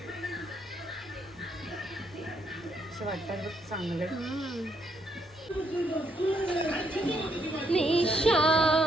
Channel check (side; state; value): both; normal; correlation 0.73